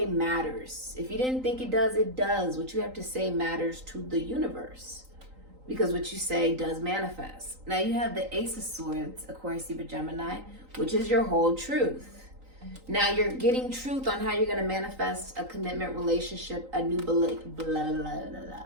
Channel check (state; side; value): late; left; 3.9 ms